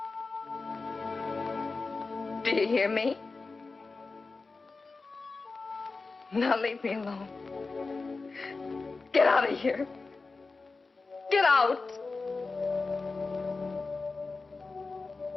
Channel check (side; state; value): right; quieter; 3.9 dB